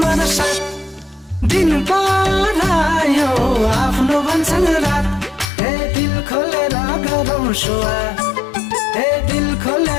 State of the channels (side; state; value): right; drops out; at 5.5 s